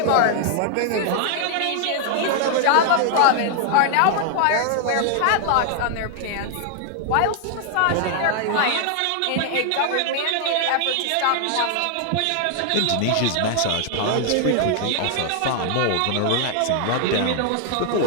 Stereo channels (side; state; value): both; different; correlation 0.00